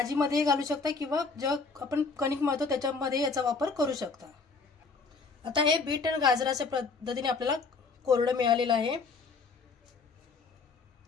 घालू शकता किंवा जे आपण कणिक मळतो त्याच्यामध्ये याचा वापर करू शकता। आता हे बीट आणि गाजराच्या पद्धतीने आपल्याला कोरडं मिळालेलं आहे।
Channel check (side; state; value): right; quieter; 4.5 dB